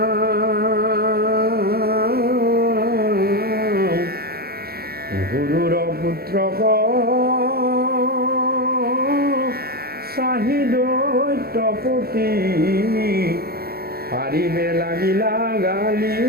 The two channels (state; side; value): late; left; 0.45 ms